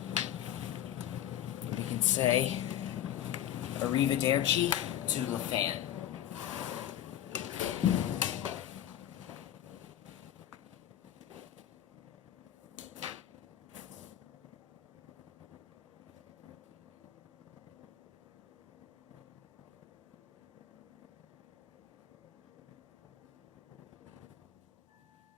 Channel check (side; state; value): right; quieter; 11.4 dB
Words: We can say arrivederci to the fan.